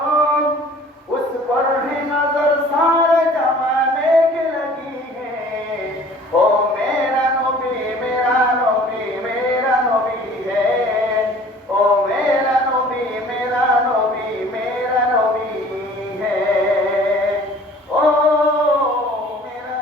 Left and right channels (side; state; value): both; normal; correlation 0.50